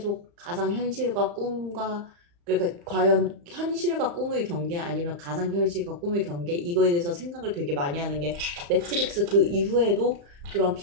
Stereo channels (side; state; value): left; late; 35 ms